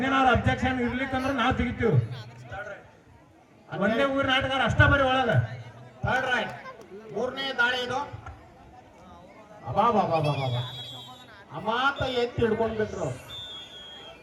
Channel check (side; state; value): both; identical; correlation 1.00